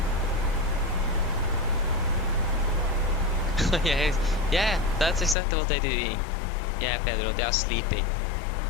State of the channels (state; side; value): drops out; right; at 5.4 s